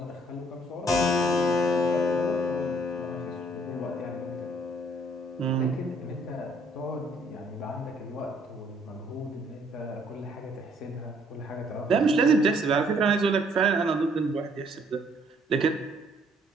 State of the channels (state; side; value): normal; both; correlation 0.64